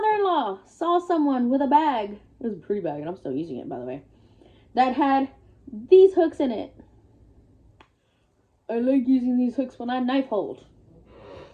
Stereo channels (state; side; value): identical; both; correlation 1.00